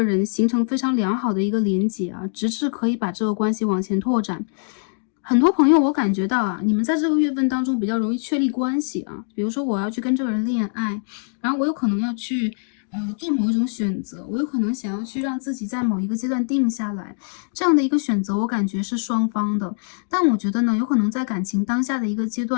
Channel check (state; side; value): silent; right; digital silence